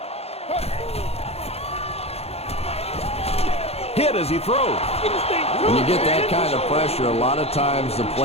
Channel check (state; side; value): late; right; 0.30 ms